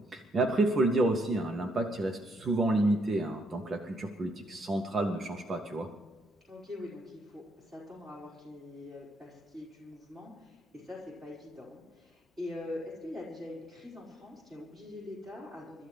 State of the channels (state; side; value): normal; both; correlation 0.73